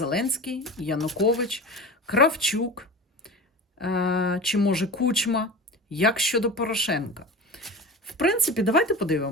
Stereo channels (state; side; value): normal; both; correlation 0.31